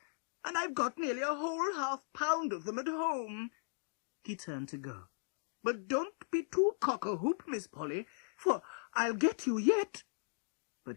"and I've got nearly a whole half-pound of them at home." He turned to go. "But don't be too cock-a-hoop, Miss Polly, for I'll get you yet."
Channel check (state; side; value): silent; right; digital silence